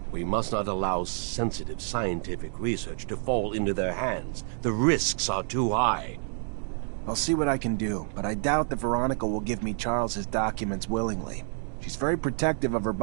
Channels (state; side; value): silent; left; 59 dB below the other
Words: We must not allow sensitive scientific research to fall into their hands. The risks are too high. I'll see what I can do, but I doubt that Veronica will give me Charles's documents willingly. She's very protective of her